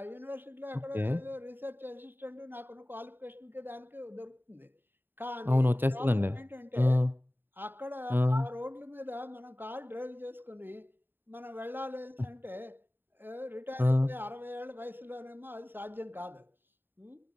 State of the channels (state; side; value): late; left; 0.096 ms